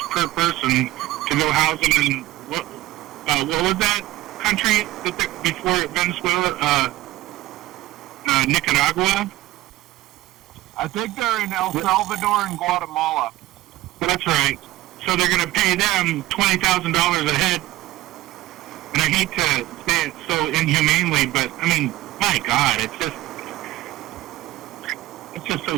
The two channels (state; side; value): quieter; left; 16.8 dB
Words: per person to go house them in what was that country before Venezuela? Nicaragua. I think they're in El Salvador and Guatemala. That's right. So they're going to pay them $20,000 a head. And I hate to say it so inhumanely, but I mean, my God, it's just so